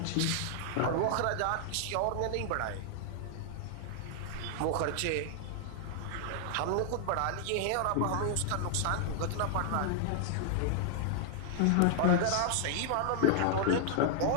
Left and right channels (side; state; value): both; different; correlation 0.00